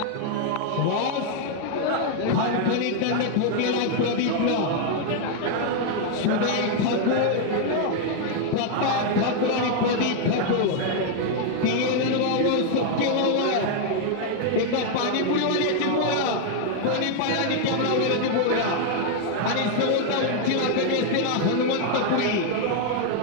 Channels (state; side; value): different; both; correlation 0.00